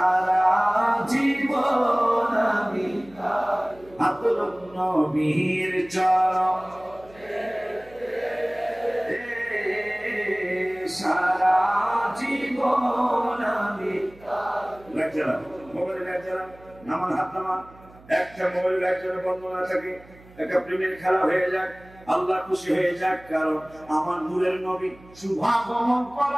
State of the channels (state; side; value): noise; right; hum, 24 dB below the sound